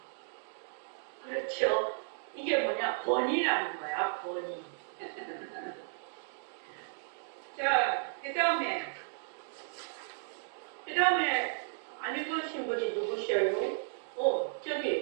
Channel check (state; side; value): silent; left; digital silence